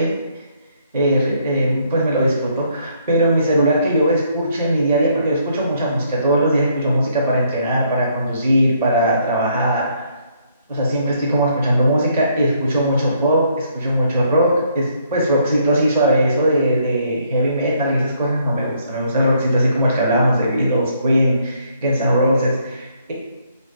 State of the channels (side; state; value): both; inverted; correlation -0.69